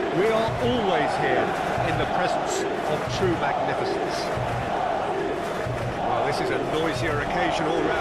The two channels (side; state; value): both; identical; correlation 1.00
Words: We are always here in the presence of true magnificence. Well, this is a noisier occasion all